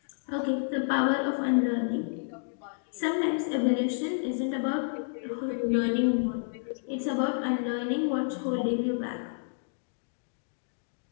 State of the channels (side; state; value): right; silent; digital silence